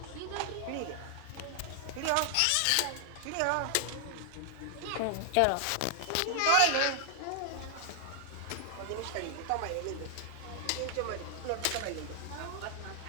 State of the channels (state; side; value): different; both; correlation 0.00